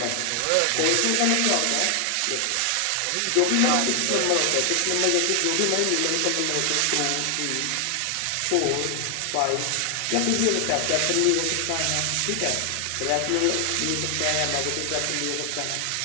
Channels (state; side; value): different; both; correlation 0.00